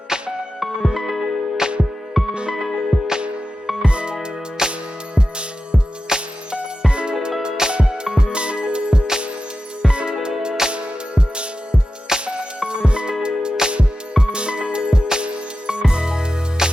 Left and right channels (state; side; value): normal; both; correlation 0.92